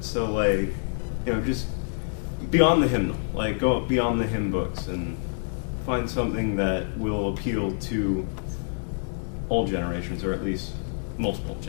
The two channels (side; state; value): right; silent; digital silence